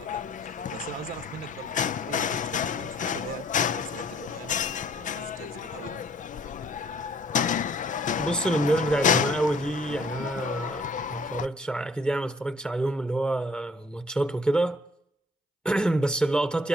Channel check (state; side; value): normal; both; correlation 0.58